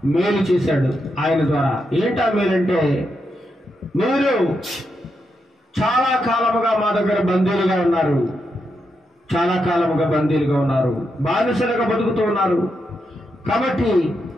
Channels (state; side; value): normal; both; correlation 0.83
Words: మేలు చేశాడు ఆయన ద్వారా. ఏంటా మేలంటే, మీరు చాలా కాలముగా మా దగ్గర బందీలుగా ఉన్నారు, చాలా కాలముగా బందీలుగా ఉన్నారు, బానిసలుగా బతుకుతూ ఉన్నారు. కాబట్టి